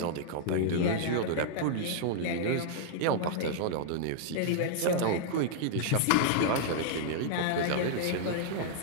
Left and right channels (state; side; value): different; both; correlation -0.01